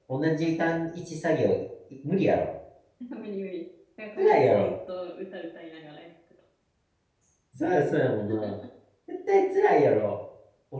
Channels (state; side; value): identical; both; correlation 1.00